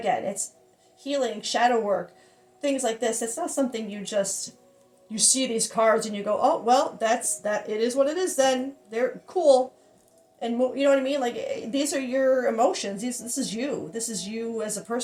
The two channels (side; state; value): both; identical; correlation 1.00